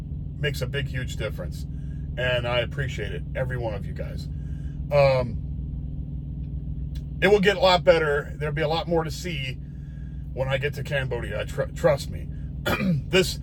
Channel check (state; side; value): identical; both; correlation 1.00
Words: makes a big, huge difference. And I appreciate it, every one of you guys. It will get a lot better. There'll be a lot more to see when I get to Cambodia. Trust me.